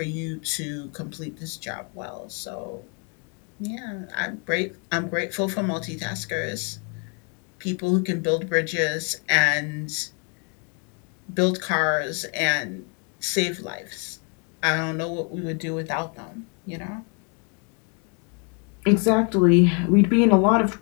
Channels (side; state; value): right; quieter; 36.1 dB